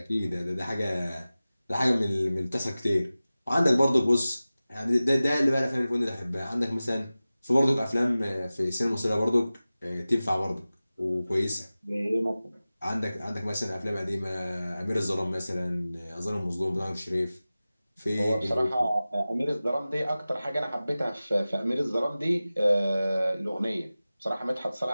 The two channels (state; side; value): inverted; both; correlation -0.96